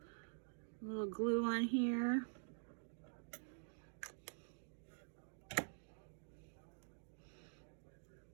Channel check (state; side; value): silent; left; digital silence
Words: little glue on here.